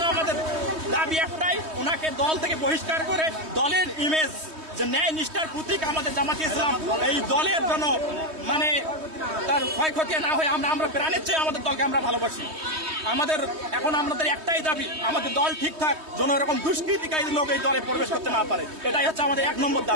আমাদের দাবি একটাই, ওনাকে দল থেকে বহিষ্কার করে দলের ইমেজ যে ন্যায় নিষ্ঠার প্রতীক আমাদের জামাতে ইসলাম, এই দলের জন্য তার ক্ষয়ক্ষতি না হয় আমরা প্রাণের চেয়ে আমাদের দলকে আমরা ভালোবাসি। আমাদের একটাই দাবি, আমাদের দল ঠিকঠাক যেন এরকম দুষ্কৃতিকারী লোক এই দলে প্রবেশ করতে না পারে, এটাই হচ্ছে আমাদের 1 নম্বর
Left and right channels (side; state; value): left; late; 3.2 ms